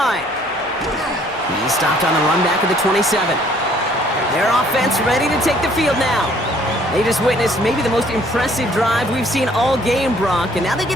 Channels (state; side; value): normal; both; correlation 0.60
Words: He's stopped on the run back of the 27. Their offense ready to take the field now. They just witnessed maybe the most impressive drive we've seen all game, Brock, and now they